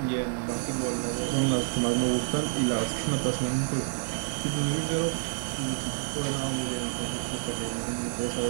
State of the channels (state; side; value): silent; left; 59 dB below the other